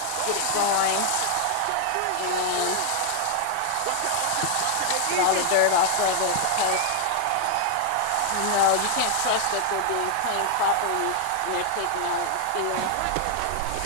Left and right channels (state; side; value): different; both; correlation 0.00